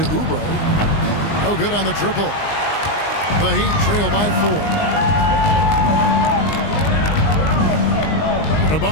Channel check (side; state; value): right; late; 19 ms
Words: Oubre. No good on the triple. The Heat trail by 4.